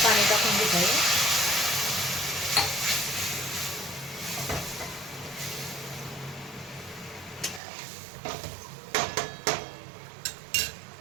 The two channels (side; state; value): left; drops out; at 7.6 s